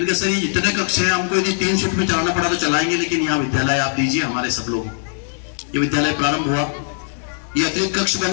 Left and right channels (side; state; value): right; silent; digital silence